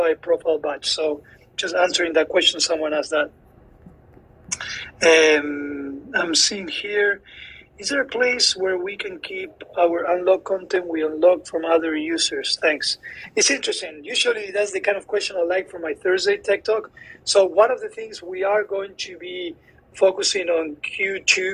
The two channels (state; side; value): identical; both; correlation 1.00